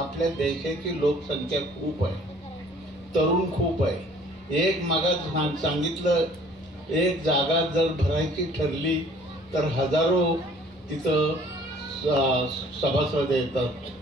देशाची लोकसंख्या खूप आहे, तरुण खूप आहे. एक मागास सांगितलं, एक जागा जर भरायची ठरली तर हजारो तिथं सभासद येतात.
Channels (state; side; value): normal; both; correlation 0.55